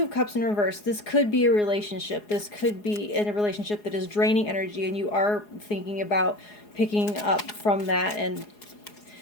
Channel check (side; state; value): right; late; 4.8 ms